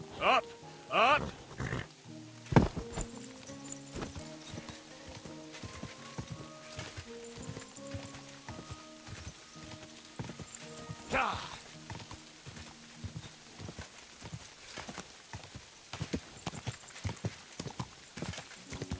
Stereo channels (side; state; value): both; identical; correlation 1.00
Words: Up! Up! God!